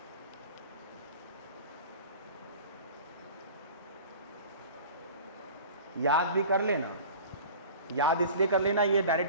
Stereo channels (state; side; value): inverted; both; correlation -0.40